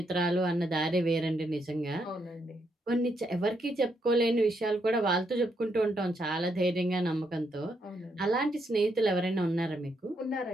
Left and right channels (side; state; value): both; normal; correlation 0.78